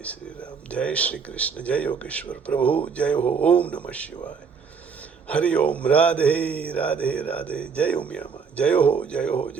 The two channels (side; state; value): left; quieter; 5.9 dB